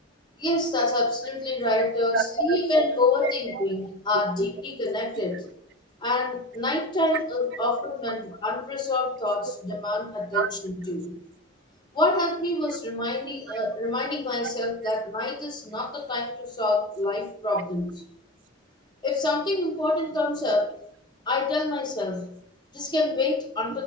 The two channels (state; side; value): normal; both; correlation 0.25